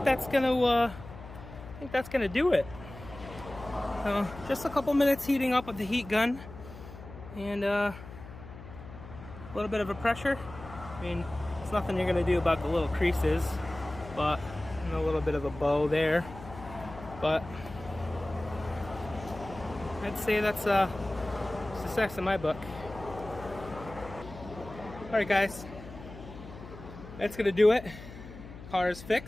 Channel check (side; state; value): left; noise; hum, 14 dB below the sound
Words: that's gonna do it. Just a couple minutes heating up with the heat gun and a little bit of a pressure. I mean, it's nothing you're gonna do about the little creases, but and a little bit of a bow there. But I'd say that's success in my book. All right, guys, that's gonna do it. Car is